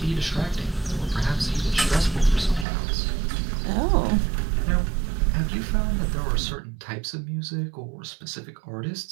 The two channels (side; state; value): left; drops out; at 2.7 s